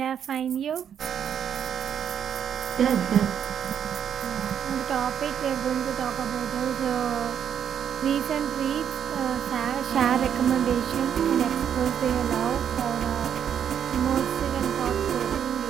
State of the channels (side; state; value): left; quieter; 8.7 dB